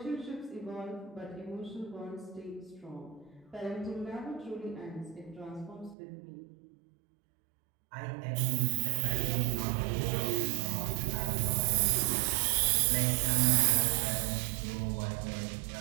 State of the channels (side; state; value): left; drops out; at 6.0 s